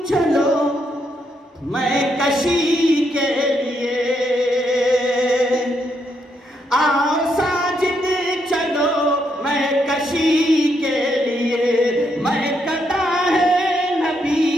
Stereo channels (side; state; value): both; normal; correlation 0.78